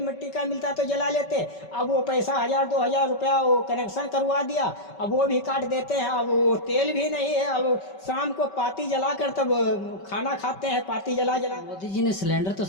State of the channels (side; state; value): right; late; 5.2 ms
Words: मिट्टी का मिलता तो जला लेते। अब वो पैसा 1,000-2,000 रुपया वो कनेक्शन करवा दिया, अब वो भी काट देते हैं। अब वो तेल भी नहीं है, अब शाम को पाती जला कर तब खाना खाते हैं, पाती जला। मोदी जी ने सिलेंडर तो